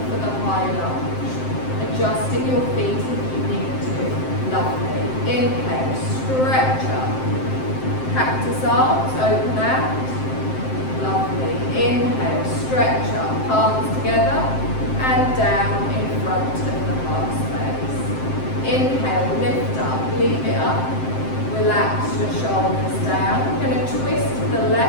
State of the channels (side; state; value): right; late; 7.7 ms